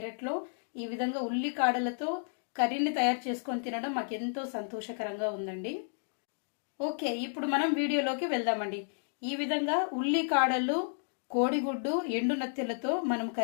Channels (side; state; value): right; silent; digital silence